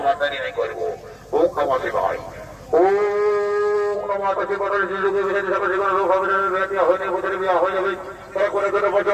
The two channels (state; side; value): identical; both; correlation 1.00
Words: দেরি নাই করবো। ও কামাসি ভাই, ও নমাসি বছরের যুগে বিয়ে হিসাবে যে কোনো রোগ হবে না, বিয়ে হয়নি, বছরে বিয়ে হয়ে যাবে। তারা করে